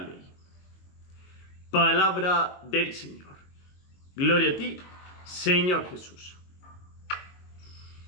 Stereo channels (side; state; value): right; late; 22 ms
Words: Palabra del Señor. Gloria a ti, Señor Jesús.